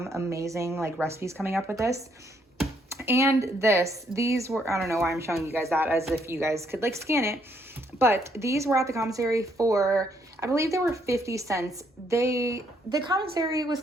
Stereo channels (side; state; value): both; normal; correlation 0.71